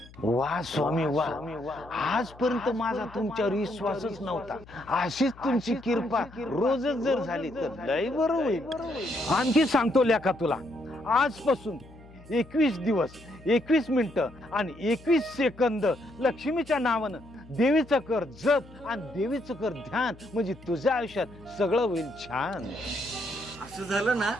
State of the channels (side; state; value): left; noise; hum, 21 dB below the sound